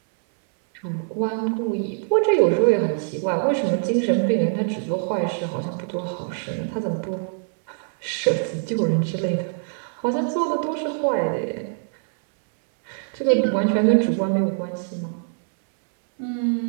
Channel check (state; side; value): silent; left; 63 dB below the other